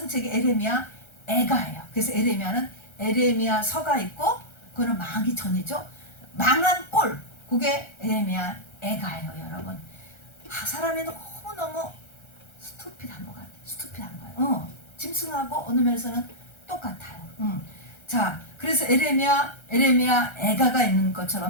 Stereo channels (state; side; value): late; right; 1.3 ms